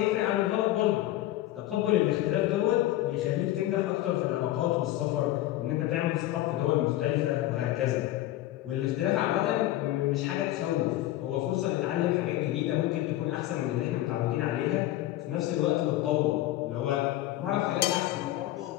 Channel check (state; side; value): quieter; right; 15.1 dB